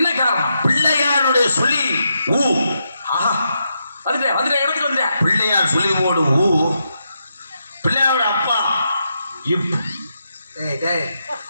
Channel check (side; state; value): both; inverted; correlation -0.83